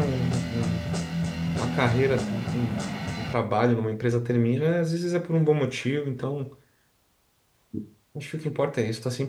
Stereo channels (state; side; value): identical; both; correlation 1.00